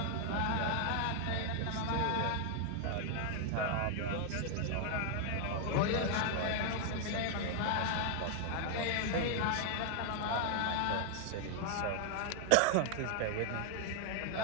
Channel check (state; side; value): different; both; correlation 0.00